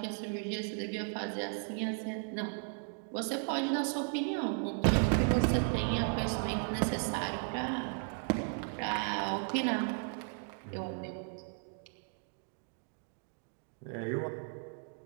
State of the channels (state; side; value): silent; left; 54 dB below the other